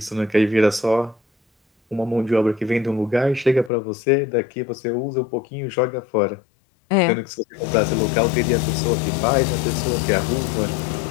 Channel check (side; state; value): right; drops out; at 3.7 s